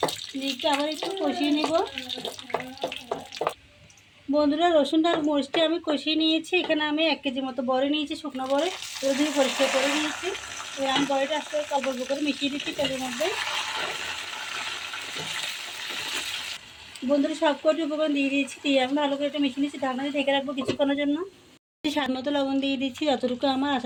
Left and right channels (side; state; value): both; identical; correlation 1.00